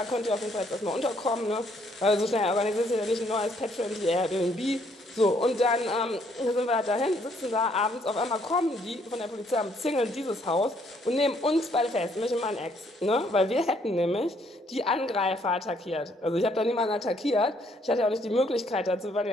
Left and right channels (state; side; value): normal; both; correlation 0.68